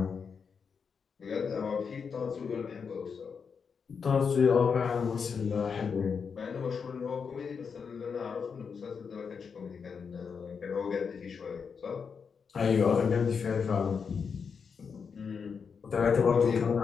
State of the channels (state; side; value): quieter; right; 6.0 dB